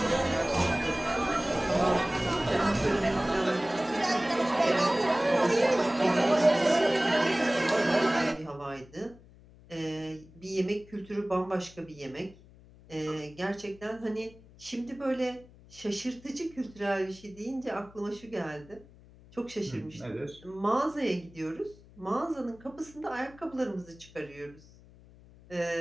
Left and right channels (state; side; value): noise; left; hum, 23 dB below the sound